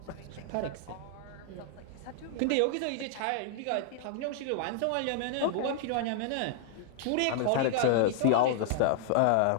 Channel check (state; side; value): different; both; correlation -0.01